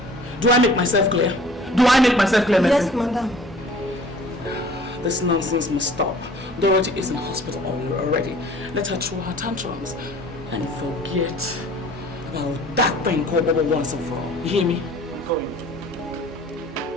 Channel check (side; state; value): both; normal; correlation 0.49